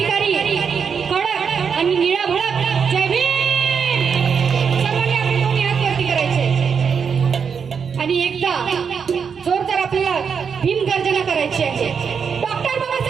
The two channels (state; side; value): quieter; left; 6.5 dB